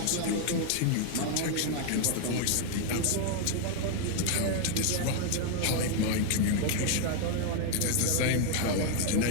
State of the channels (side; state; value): both; different; correlation 0.00